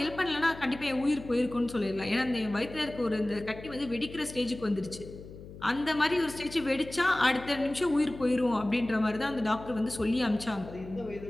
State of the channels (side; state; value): left; noise; hum, 15 dB below the sound